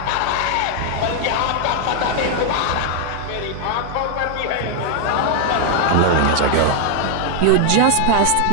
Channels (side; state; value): both; different; correlation 0.00